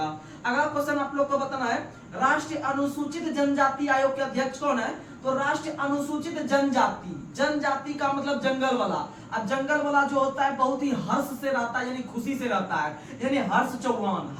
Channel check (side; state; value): both; identical; correlation 1.00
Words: अगला क्वेश्चन आप लोग को बताना है, राष्ट्रीय अनुसूचित जनजाति आयोग के अध्यक्ष कौन है? तो राष्ट्रीय अनुसूचित जनजाति, जनजाति का मतलब जंगल वाला। अब जंगल वाला जो होता है बहुत ही हर्ष से रहता है, यानी खुशी से रहता है, यानी हर्ष चौहान।